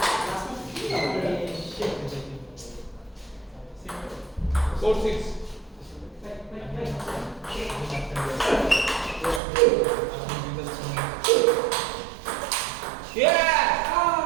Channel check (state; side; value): drops out; left; at 9.4 s